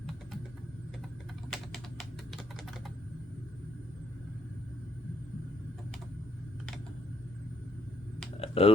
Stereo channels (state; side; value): normal; both; correlation 0.72